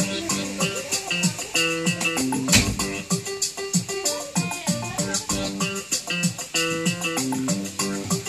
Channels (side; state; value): both; identical; correlation 1.00